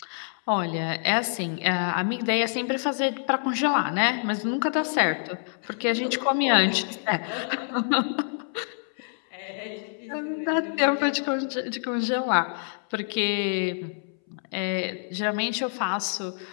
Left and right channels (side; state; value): right; silent; 60 dB below the other